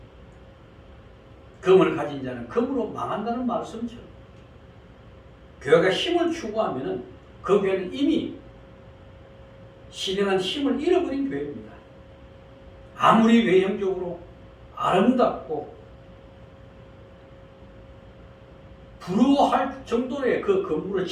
금을 가진 자는 금으로 망한다는 말씀처럼 교회가 힘을 추구하면 그 교회는 이미 신령한 힘을 잃어버린 교회입니다. 아무리 외형적으로 아름답고 부러워할 정도의 그 건물을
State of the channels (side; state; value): both; identical; correlation 1.00